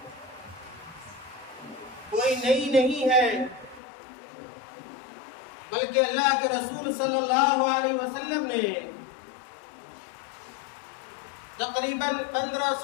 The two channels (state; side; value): drops out; right; at 3.8 s